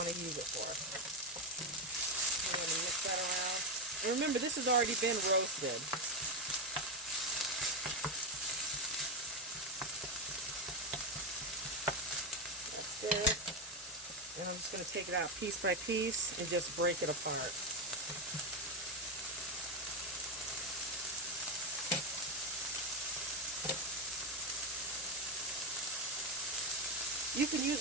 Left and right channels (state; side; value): normal; both; correlation 0.10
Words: to use it for. I'm going to mix that around. And remember, this has already been roasted. That's good. And I'm just going to take it out piece by piece and just break it apart. You can